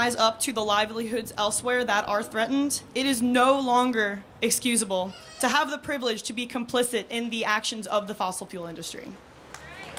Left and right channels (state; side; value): identical; both; correlation 1.00